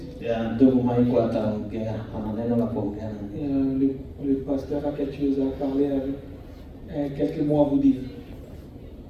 Ya ndugu Maiko ataongea, ana neno la kuongea na ninyi. Le pasteur a quelque chose à parler avec, quelques mots à vous dire.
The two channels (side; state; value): both; identical; correlation 1.00